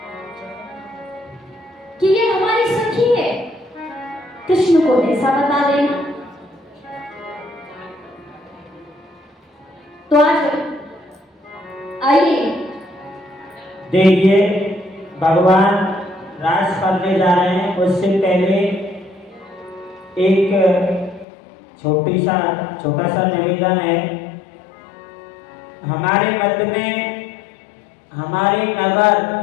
कि ये हमारी सखी है, कृष्ण को ऐसा बता देना। तो आज आइए देखिए, भगवान रास करने जा रहे हैं। उससे पहले एक छोटा सा निवेदन है। हमारे मध्य में हमारे नगर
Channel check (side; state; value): right; drops out; at 21.2 s